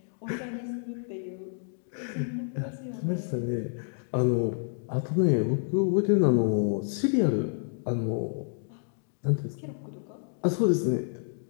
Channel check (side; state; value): right; silent; digital silence